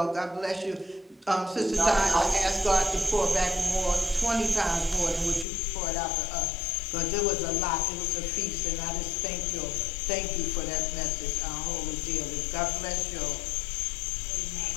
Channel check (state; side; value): drops out; right; at 5.5 s